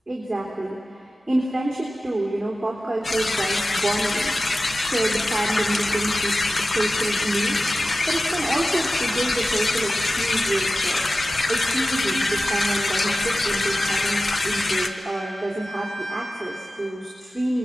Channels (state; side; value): normal; both; correlation 0.94